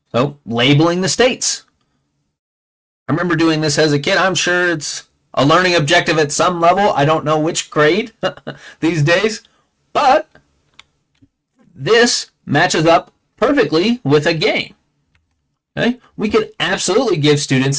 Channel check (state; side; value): identical; both; correlation 1.00